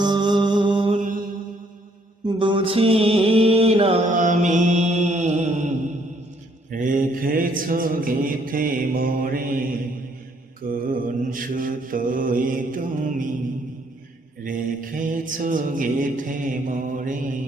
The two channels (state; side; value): normal; both; correlation 0.67